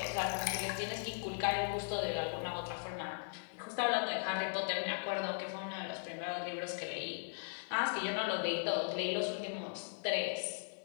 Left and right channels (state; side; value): silent; right; digital silence